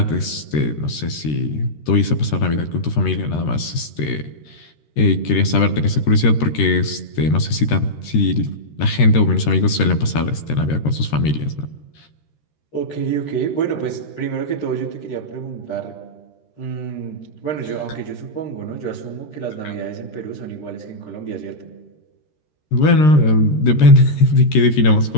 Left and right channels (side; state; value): right; late; 13 ms